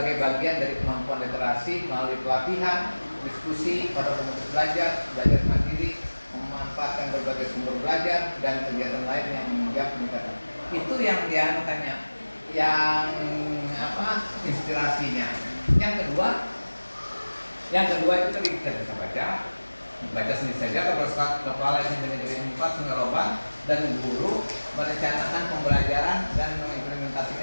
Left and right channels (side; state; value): both; inverted; correlation -1.00